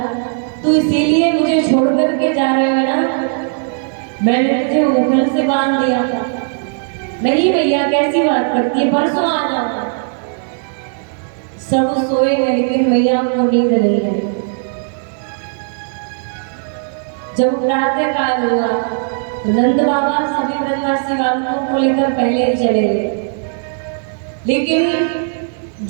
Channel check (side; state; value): left; silent; 63 dB below the other